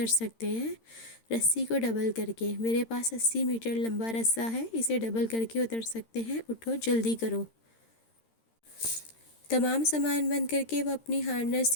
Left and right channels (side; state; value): right; late; 13 ms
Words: سکتے ہیں، رسی کو ڈبل کر کے۔ میرے پاس 80 میٹر لمبا رسہ ہے، اسے ڈبل کر کے اتر سکتے ہیں۔ اٹھو، جلدی کرو۔ تمام سامان بند کر کے وہ اپنی ہارنس